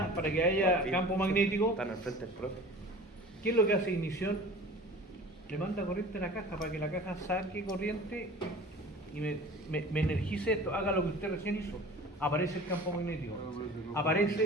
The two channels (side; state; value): both; normal; correlation 0.42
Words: para que haya campo magnético, Están al frente del profe. ¿qué es lo que hace ignición? Le manda corriente a la caja para que la caja saque corriente y me energice esto, haga lo que usted recién hizo. Aparece el campo magnético.